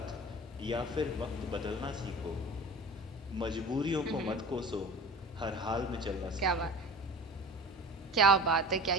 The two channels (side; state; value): both; normal; correlation 0.38